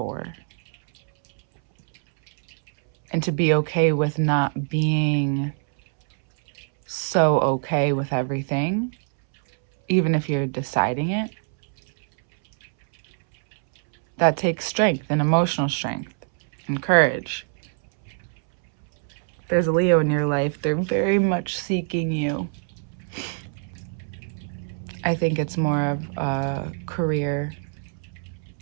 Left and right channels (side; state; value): left; silent; 63 dB below the other